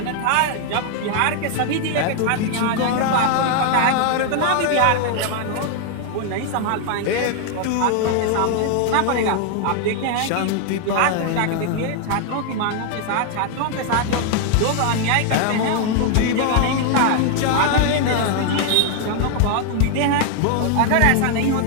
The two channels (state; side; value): different; both; correlation 0.00